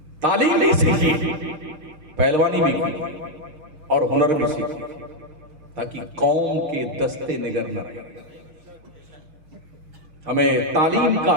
تعلیم بھی سیکھی, پہلوانی بھی کی اور ہنر بھی سیکھی, تاکہ قوم کے دستے نگر نہ رہے. ہمیں تعلیم کا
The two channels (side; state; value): left; late; 6.0 ms